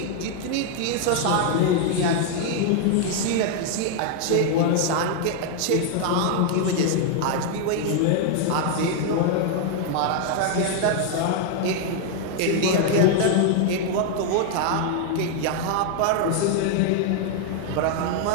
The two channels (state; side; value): different; both; correlation 0.00